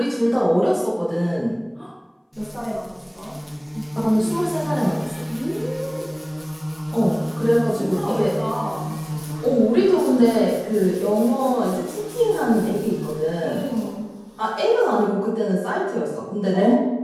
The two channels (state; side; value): identical; both; correlation 1.00